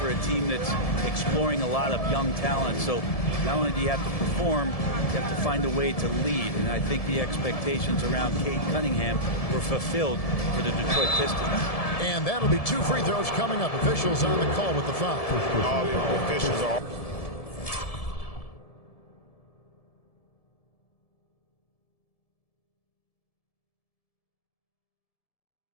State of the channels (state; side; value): late; right; 1.7 ms